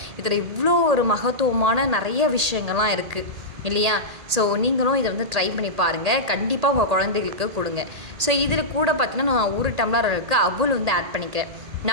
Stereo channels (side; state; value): left; late; 1.8 ms